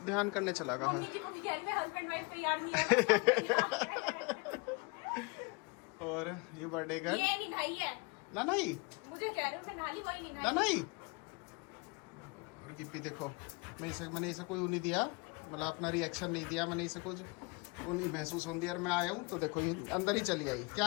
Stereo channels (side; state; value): right; quieter; 29.0 dB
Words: ध्यान करने चला गया। मम्मी जी को भी कह रही है हस्बैंड वाइफ तैयार नहीं है। और ये बर्थडे गर्ल ये नहीं भाई है ना, नहीं मुझे कह रहे हो मैं नाली वही नहीं ना, नहीं। और गिप्पी देखो, मैंने इसे कोई वो नहीं दिया, मतलब अपना रिएक्शन नहीं दिया। मैंने इसे कुछ वो नहीं महसूस होने दिया। मैं आया हूँ तो देखो ये अंदर ही चली आई।